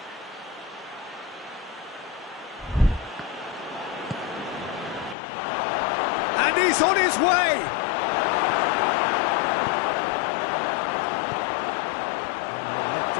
And he's on his way. Let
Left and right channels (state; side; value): drops out; right; at 5.2 s